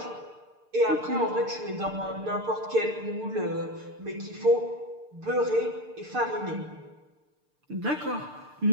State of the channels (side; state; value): left; late; 6.7 ms